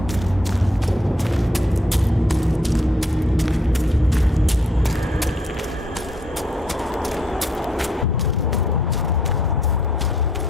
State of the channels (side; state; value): both; normal; correlation 0.68